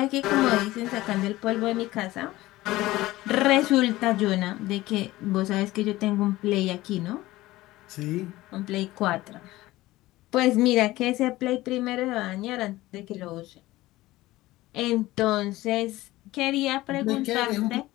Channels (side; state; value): right; quieter; 17.8 dB